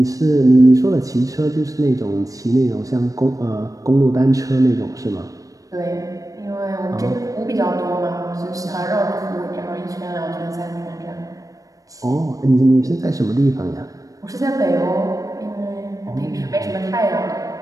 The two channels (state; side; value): late; left; 0.16 ms